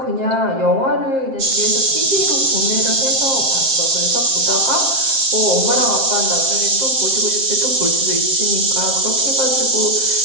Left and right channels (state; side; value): late; left; 7.6 ms